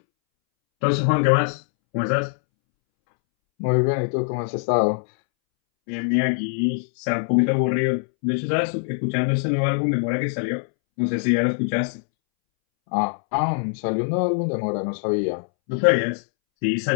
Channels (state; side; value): silent; right; 64 dB below the other